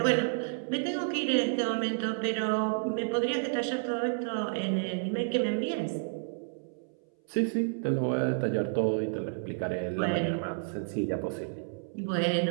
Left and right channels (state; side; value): silent; left; 57 dB below the other